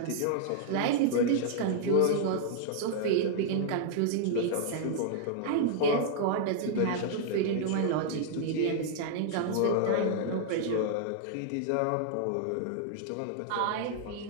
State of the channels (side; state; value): both; different; correlation -0.01